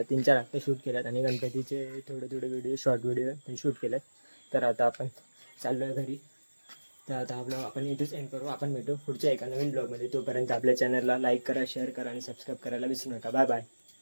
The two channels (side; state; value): both; inverted; correlation -1.00